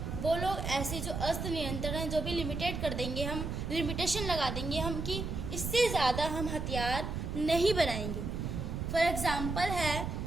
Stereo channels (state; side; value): noise; right; rumble, 4 dB below the sound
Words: वो लोग ऐसे जो अस्त्र नियंत्रण है जो भी लिमिटेड कर देंगे, हम लिमिटेशन लगा देंगे हम कि इससे ज़्यादा हम हथियार नहीं बनाएंगे। फॉर एग्जांपल है